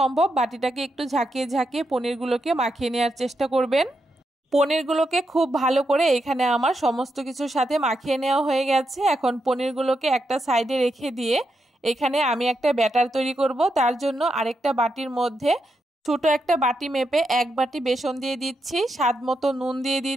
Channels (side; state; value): both; normal; correlation 0.84